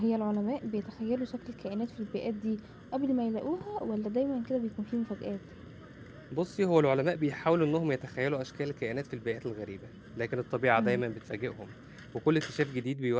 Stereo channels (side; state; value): both; identical; correlation 1.00